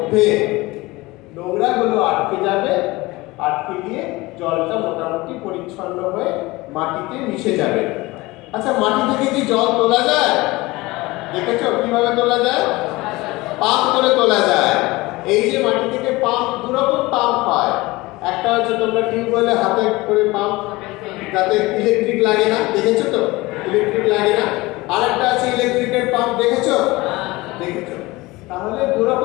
নোংরাগুলো আটকে যাবে, আটকে গিয়ে জলটা মোটামুটি পরিচ্ছন্ন হয়ে মাটিতে মিশে যাবে। আচ্ছা, মাটি থেকে কি জল তোলা যায়? দেখেছো কিভাবে তোলা যায়? পাম্প করে তোলা যায়। এই যে মাটি থেকে পাম্প, দুরকম পাম্প হয়। একটা হচ্ছে তোমরা টিউবওয়েলে হাতে করে পাম্প, যাতে ইলেকট্রিক লাগে না, দেখেছো তো? ইলেকট্রিক লাগে না। আর একটা আছে ইলেকট্রিকের পাম্প, দেখেছো? দেখেছো? তাহলে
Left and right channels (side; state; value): right; quieter; 21.2 dB